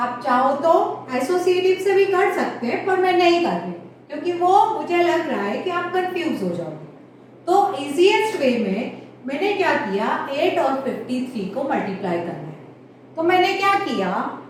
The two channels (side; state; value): both; identical; correlation 1.00